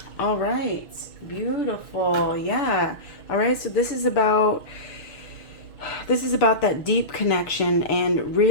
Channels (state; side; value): late; right; 6.4 ms